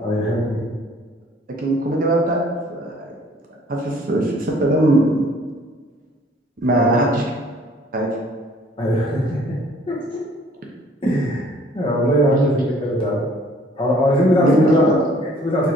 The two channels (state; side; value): normal; both; correlation 0.57